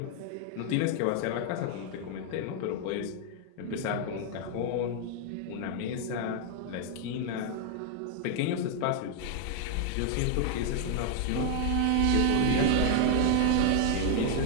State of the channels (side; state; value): both; different; correlation 0.00